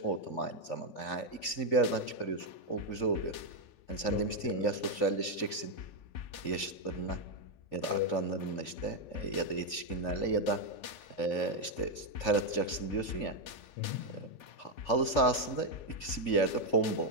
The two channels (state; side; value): late; right; 3.4 ms